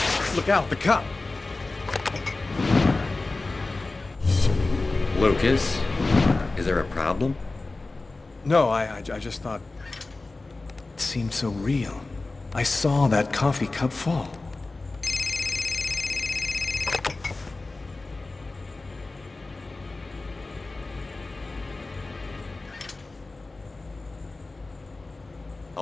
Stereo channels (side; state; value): right; quieter; 3.3 dB